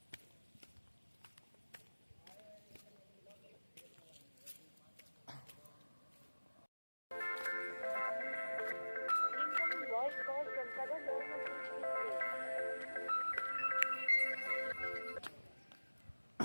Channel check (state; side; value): inverted; both; correlation -1.00